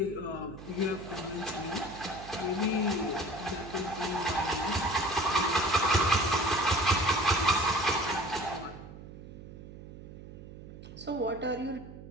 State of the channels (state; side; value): noise; right; hum, 14 dB below the sound